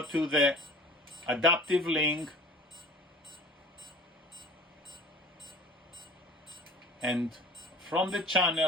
to the adaptive link, and from the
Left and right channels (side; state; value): both; normal; correlation 0.43